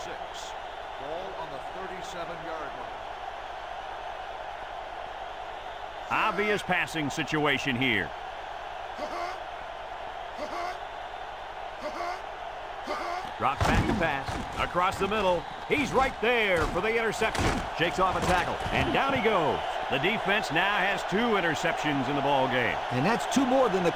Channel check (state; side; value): identical; both; correlation 1.00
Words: Ball on the 37-yard line. Obvious passing situation here. Drops back to pass. Across the middle. He's right there for the interception. Shakes off a tackle. And down he goes. The defense now has 2 interceptions in the ball game. And that's 2 more than the